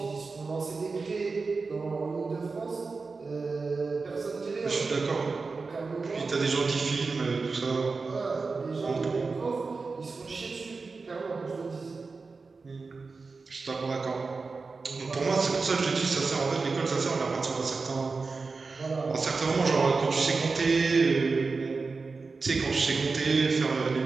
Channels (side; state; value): left; quieter; 4.3 dB